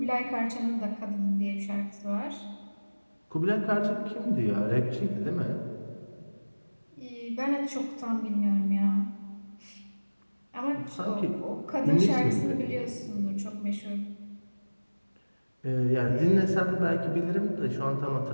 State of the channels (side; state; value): both; inverted; correlation -1.00